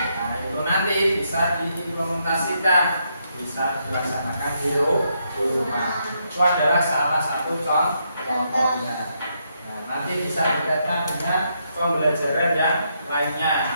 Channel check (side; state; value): both; inverted; correlation -0.78